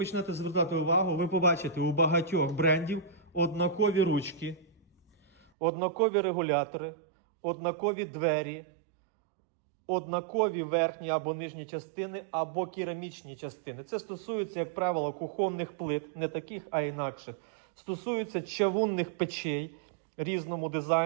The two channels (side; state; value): left; drops out; at 5.5 s